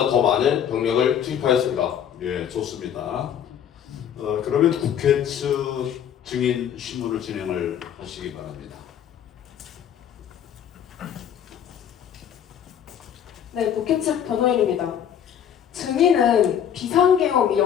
더 많은 병력을 투입하였습니다. 예, 좋습니다. 그러면 국회 측 증인 신문을 진행을 하시기 바랍니다. 네, 국회 측 변호인입니다. 증인은 비상계엄이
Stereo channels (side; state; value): right; quieter; 9.1 dB